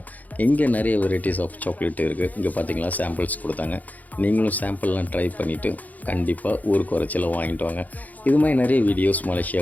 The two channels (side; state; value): right; late; 0.079 ms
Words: இங்கே நிறைய வெரைட்டிஸ் ஆஃப் சாக்லேட் இருக்குது. இங்கே பார்த்தீங்களா சாம்பிள்ஸ் கொடுத்தாங்க. நீங்களும் சாம்பிள்லாம் ட்ரை பண்ணிவிட்டு கண்டிப்பாக ஊருக்கு வரச்சில் வாங்கிட்டு வாங்க. இது மாதிரி நிறைய வீடியோஸ்